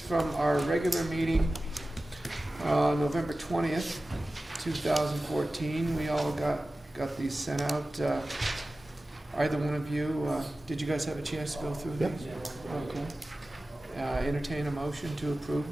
our regular meeting November 20th, 2014. We all got these sent out. Either one of you, did you guys have a chance to go through these? Okay. Entertain a motion to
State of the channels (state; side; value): normal; both; correlation 0.96